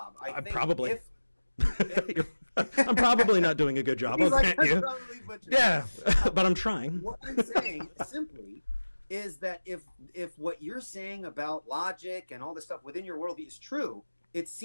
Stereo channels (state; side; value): inverted; both; correlation -1.00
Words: I think probably. I'm probably not doing a good job. I'll grant you. Yeah, but I'm trying. What I'm saying simply is that if what you're saying about logic and all this stuff within your worldview is true, it